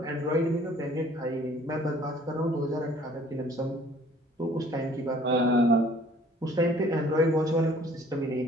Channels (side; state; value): both; normal; correlation 0.55